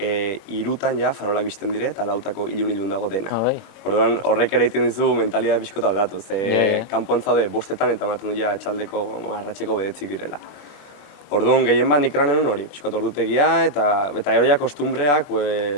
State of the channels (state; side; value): late; right; 24 ms